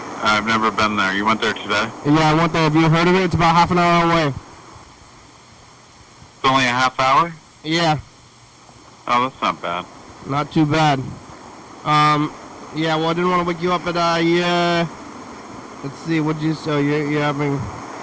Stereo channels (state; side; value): identical; both; correlation 1.00